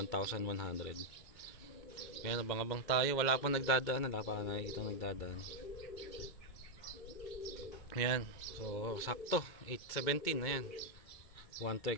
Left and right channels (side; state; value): right; late; 2.1 ms